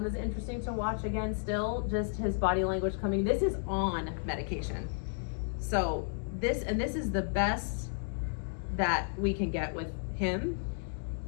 is interesting to watch again still, just his body language coming. This is on medication. So this is the best that we can get with him,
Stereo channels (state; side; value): silent; right; digital silence